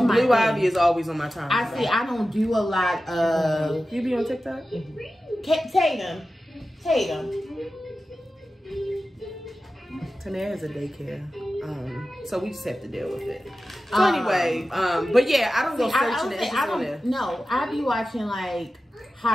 my Blue thing. Ivy is always on my timeline. I see. I don't do a lot of. You be on TikTok? Tatum. Tanae has a daycare, so we just have to deal with it. So anyway, but yeah, I don't go searching it. I don't. No, I be watching like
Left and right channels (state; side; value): normal; both; correlation 0.94